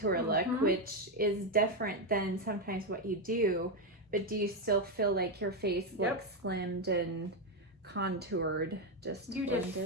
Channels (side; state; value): both; normal; correlation 0.06